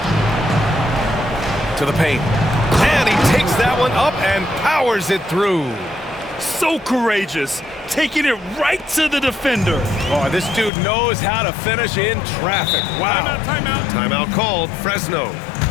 To the paint. And he takes that one up and powers it through. So courageous, taking it right to the defender. Oh, this dude knows how to finish in traffic. Wow. Timeout. Timeout called. Fresno.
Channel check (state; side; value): drops out; right; at 10.7 s